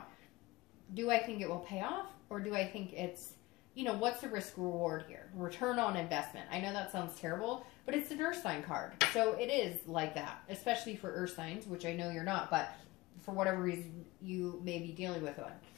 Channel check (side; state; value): right; quieter; 20.4 dB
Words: do I think it will pay off, or do I think it's, you know, what's the risk reward here? Return on investment. I know that sounds terrible, but it's an earth sign card. So it is like that, especially for earth signs, which I know you're not, but for whatever reason you may be dealing with one.